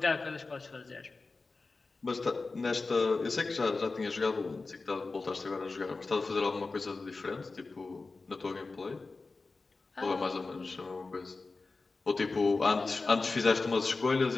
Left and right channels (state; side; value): quieter; right; 3.8 dB